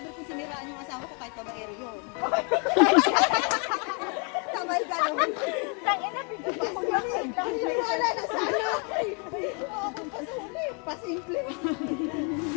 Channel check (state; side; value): quieter; right; 36.4 dB